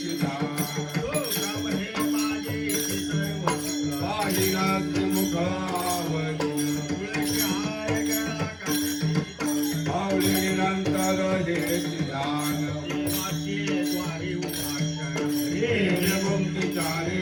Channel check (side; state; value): both; identical; correlation 1.00